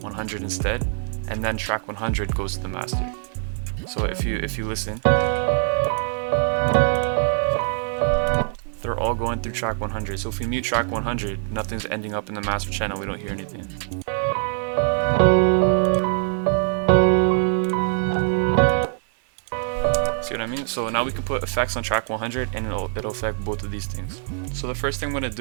instead, and then track 100 goes to the master. So if you listen, they're all going through track 100. So if we mute track 100, nothing's ending up in the master channel, we don't hear anything. See what I mean? So now we can put effects on track 100, and it'll affect both of these things. So the first thing I'm gonna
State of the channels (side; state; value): left; silent; 63 dB below the other